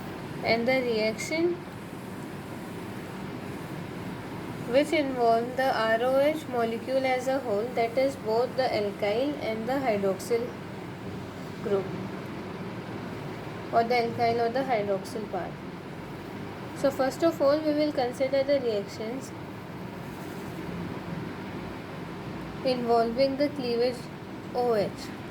and the reaction which involve the ROH molecule as a whole, that is both the alkyl and the hydroxyl group, or the alkyl or the hydroxyl part. So first of all, we will consider the reactions involving the cleavage OH.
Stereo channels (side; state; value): both; identical; correlation 1.00